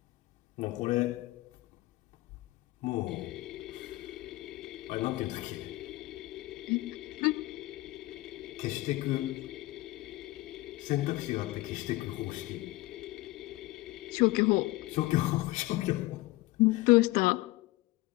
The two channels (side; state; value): right; quieter; 19.7 dB